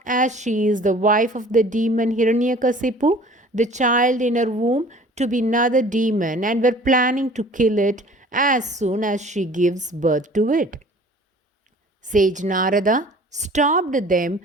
as she is the wife of the demon Hiranyakasipu, the child in her womb to be another demon, and were planning to kill it as soon as she gives birth to it. Sage Narada stopped them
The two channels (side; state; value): both; normal; correlation 0.48